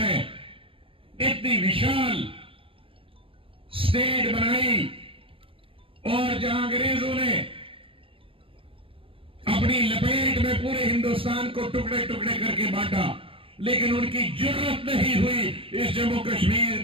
इतनी विशाल स्टेट बनाई और जहां अंग्रेजों ने अपनी लपेट में पूरे हिंदुस्तान को टुकड़े टुकड़े करके बांटा, लेकिन उनकी जरूरत नहीं हुई इस जम्मू कश्मीर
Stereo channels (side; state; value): left; late; 0.26 ms